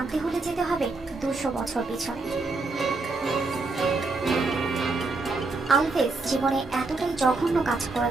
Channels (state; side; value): quieter; left; 3.6 dB